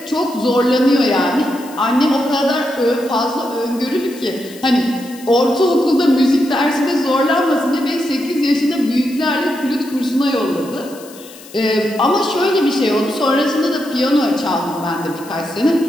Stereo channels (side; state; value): left; noise; hiss, 20 dB below the sound